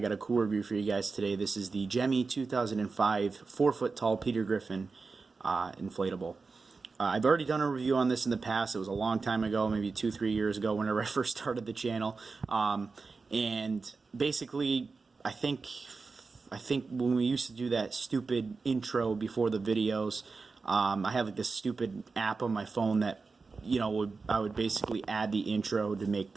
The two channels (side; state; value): left; quieter; 4.3 dB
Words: a cool review for you guys today. This is the Gemmy 2005 4-foot tall Peter Griffin inflatable. I've already done a review on this in the past. It was a long time ago, maybe 2-3 years ago, whenever I first started the channel. And basically, I think when we used to do that stupid intro before the videos, I have like this stupid app on my phone that I would basically add the intro to make